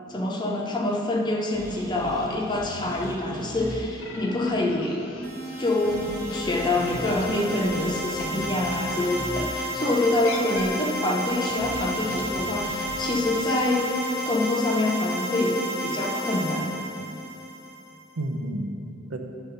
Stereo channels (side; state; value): both; normal; correlation 0.52